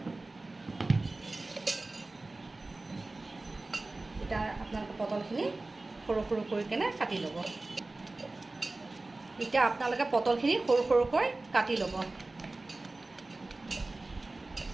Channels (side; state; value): left; quieter; 3.1 dB